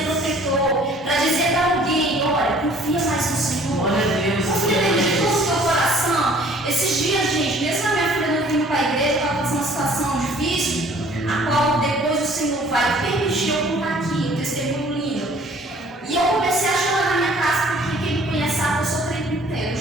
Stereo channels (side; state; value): both; normal; correlation 0.54